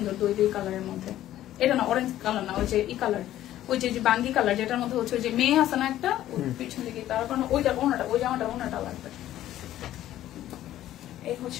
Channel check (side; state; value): right; quieter; 13.2 dB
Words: দুই কালারের মধ্যে। এটা না অরেঞ্জ কালার না, ওই যে ই কালার, ওই যে বাঙ্গি কালার, যেটার মধ্যে হচ্ছে ওই যে মেয়ে আছে না একটা পিছন দিকে, তার কারণে ওইটা ওনাটা, ওই জামাটা ওনাটা লাগবে। এই